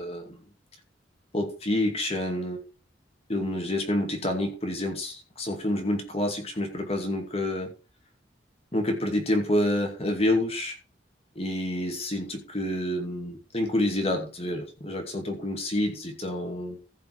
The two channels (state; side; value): normal; both; correlation 0.65